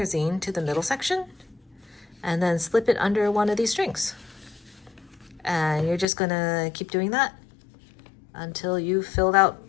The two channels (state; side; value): drops out; right; at 6.1 s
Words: zine to the middle section and then slip it under one of these strings, and you're just going to keep doing that until you've filled out